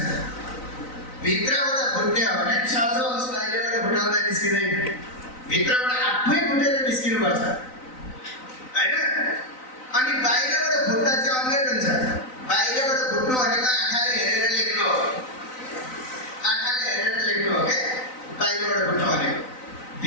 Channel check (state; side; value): late; right; 3.9 ms